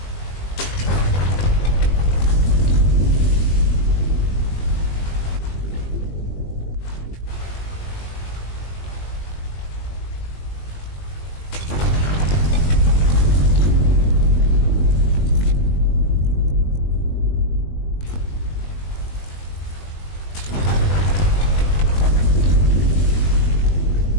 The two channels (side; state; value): right; late; 20 ms